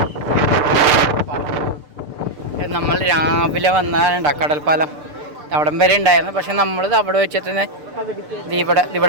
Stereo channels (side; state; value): left; late; 6.7 ms